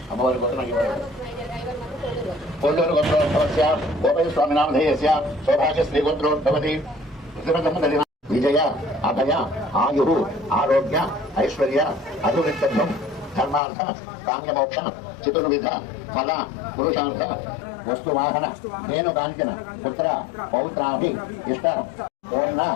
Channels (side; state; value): right; drops out; at 13.6 s